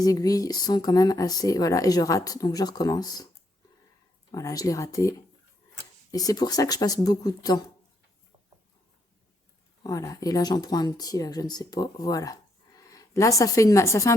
aiguilles sont quand même assez... Voilà, et je rate. Donc, je recommence. Voilà, je l'ai raté. Et c'est pour ça que je passe beaucoup de temps. Voilà. Et là, j'en prends un petit, là, je ne sais pas. Voilà. Là, ça fait un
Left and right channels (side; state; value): both; normal; correlation 0.75